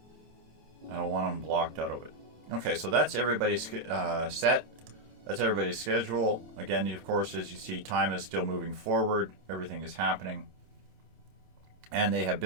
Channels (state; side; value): late; left; 27 ms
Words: I don't want them blocked out of it. Okay, so that's everybody's set. That's everybody's schedule. Again, of course, as you see, time is still moving forward. Everything is happening. And they have